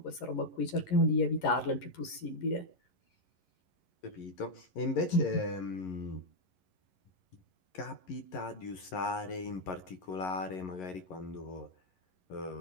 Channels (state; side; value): late; right; 11 ms